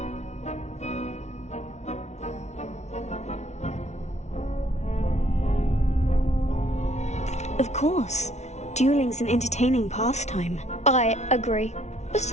Of course. Dueling's an entertaining pastime. I agree.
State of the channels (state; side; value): late; right; 0.32 ms